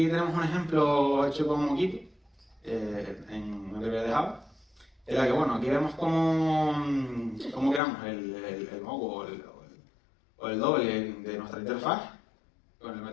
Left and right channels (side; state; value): right; drops out; at 7.8 s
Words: tenemos un ejemplo hecho con Moquito, en una librería de Java, en la que, bueno, aquí vemos cómo creamos el mock o el doble de nuestra interfaz con el